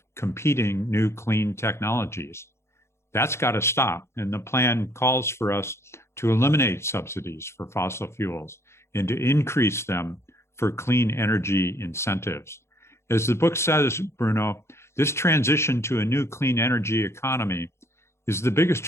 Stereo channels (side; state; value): right; late; 0.13 ms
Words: competing new clean technologies. That's got to stop, and the plan calls for us to eliminate subsidies for fossil fuels and to increase them for clean energy incentives. As the book says, Bruno, this transition to a new clean energy economy is the biggest